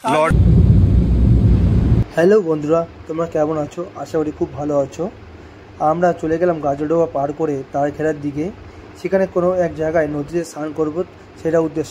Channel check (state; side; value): identical; both; correlation 1.00